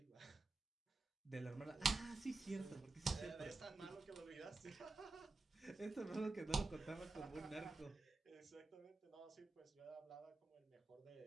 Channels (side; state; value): left; quieter; 3.5 dB